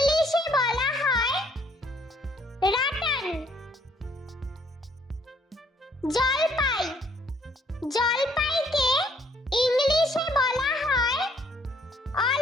বলা হয় রাটান। জলপাইকে ইংলিশে বলা হয়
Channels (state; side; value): normal; both; correlation 0.65